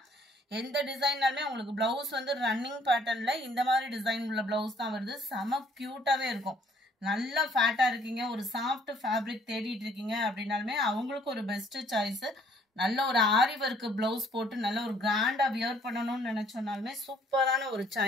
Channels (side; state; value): both; normal; correlation 0.62